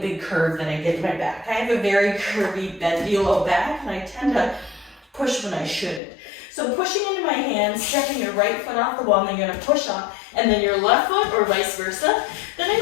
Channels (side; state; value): right; drops out; at 6.0 s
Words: curve that I get in my back. I have a very curvy, bendy low back, and I tend to push when I shouldn't. So pushing into my hands, stepping your right foot off the wall, and then you're gonna push up, and then your left foot, or vice versa. Then I'm